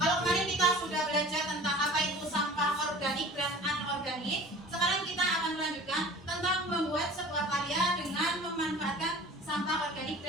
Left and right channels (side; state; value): both; normal; correlation 0.42